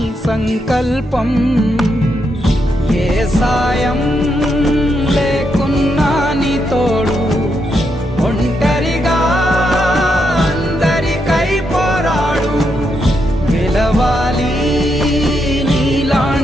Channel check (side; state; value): both; normal; correlation 0.81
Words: సంకల్పం. ఏ సాయం లేకున్నా నీ తోడు, ఒంటరిగా అందరికై పోరాడు. గెలవాలి